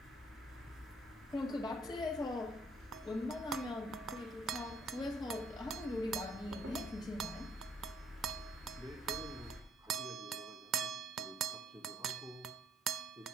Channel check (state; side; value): normal; both; correlation 0.66